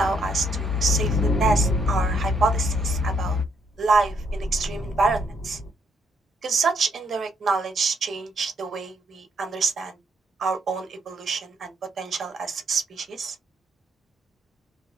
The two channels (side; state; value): both; normal; correlation 0.72